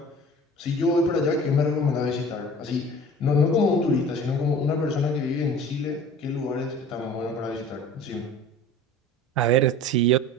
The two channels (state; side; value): normal; both; correlation 0.42